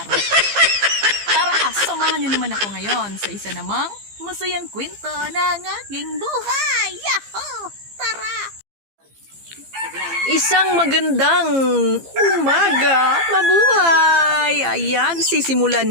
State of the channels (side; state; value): left; late; 15 ms